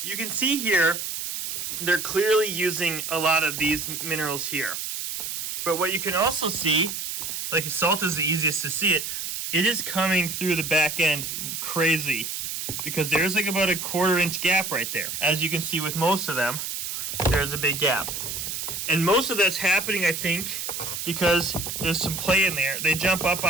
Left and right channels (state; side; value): noise; right; hiss, 4 dB below the sound